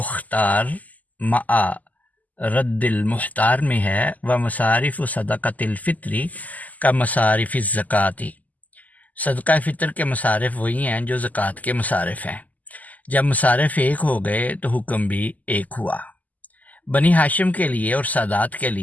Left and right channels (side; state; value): right; late; 0.078 ms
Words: مع رد المختار میں ہے، و مصارف صدقۃ الفطری کا مصارف الزکاتی، صدقہ فطر کے مصارف وہی ہیں جو زکوٰۃ کے مصارف ہیں۔ جب مصارف ایک ہو گئے تو حکم بھی ایک ہوا۔ بنی ہاشم کے لیے اور سادات کے